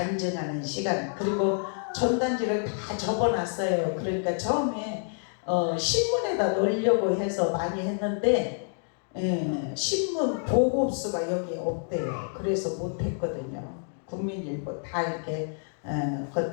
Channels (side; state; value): right; silent; digital silence